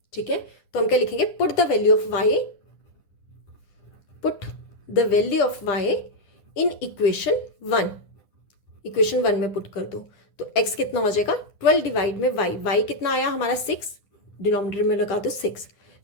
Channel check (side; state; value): right; late; 10 ms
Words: ठीक है, तो हम क्या लिखेंगे, put the value of y in equation 1। Equation 1 में पुट कर दो तो x कितना हो जाएगा, 12 डिवाइड में y कितना आया हमारा 6, डिनोमिनेटर में लगा दो 6,